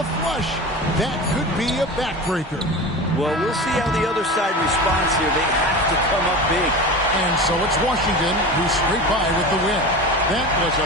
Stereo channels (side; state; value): both; normal; correlation 0.30